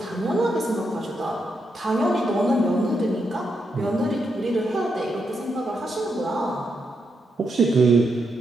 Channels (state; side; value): normal; both; correlation 0.82